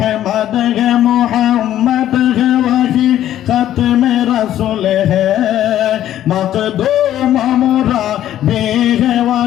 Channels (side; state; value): right; quieter; 12.1 dB